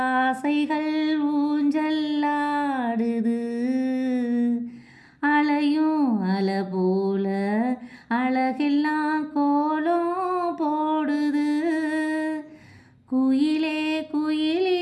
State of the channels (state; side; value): identical; both; correlation 1.00